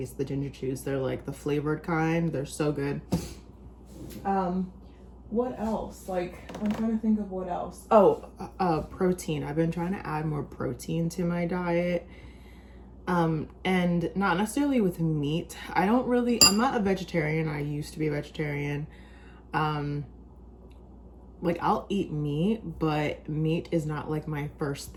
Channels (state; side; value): identical; both; correlation 1.00